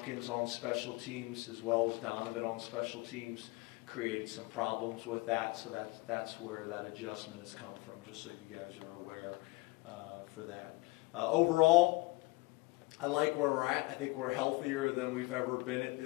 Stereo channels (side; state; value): right; quieter; 23.3 dB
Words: on special teams as well as Donovan on special teams, created some problems with that. So that's where that adjustment has come from. Just so you guys are aware for that. Overall, I like where we're at. I think we're healthier than we've ever been at